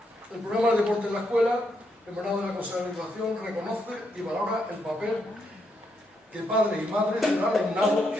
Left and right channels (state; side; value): normal; both; correlation 0.79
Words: El programa de deporte en la escuela, emanado de la Consejería de Educación, reconoce y valora el papel que padres y madres del alumnado